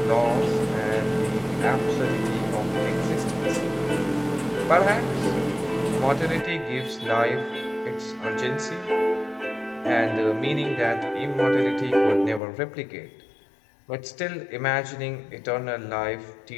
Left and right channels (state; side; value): drops out; right; at 12.4 s